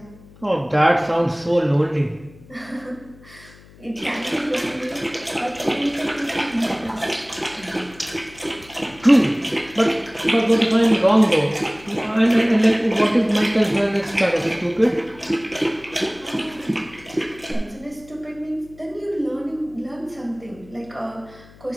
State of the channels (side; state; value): left; noise; hum, 23 dB below the sound